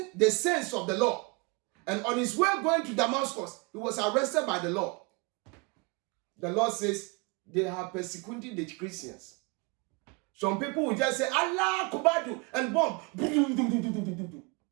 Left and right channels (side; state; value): left; quieter; 28.8 dB